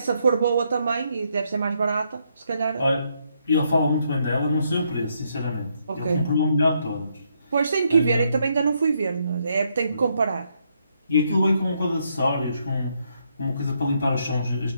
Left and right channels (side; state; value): both; inverted; correlation -0.75